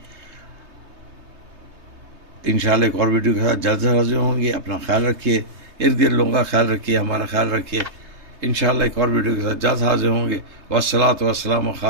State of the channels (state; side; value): late; left; 3.3 ms